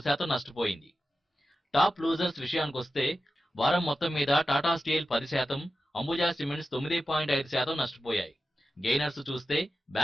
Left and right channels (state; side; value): normal; both; correlation 0.92